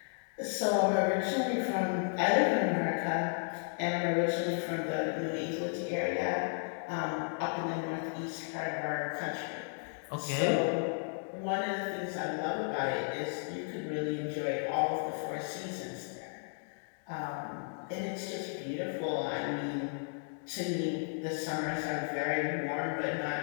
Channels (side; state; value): right; silent; 55 dB below the other